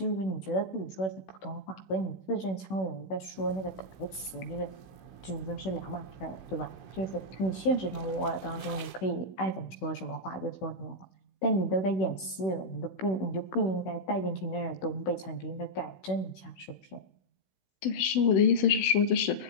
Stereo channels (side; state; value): right; late; 16 ms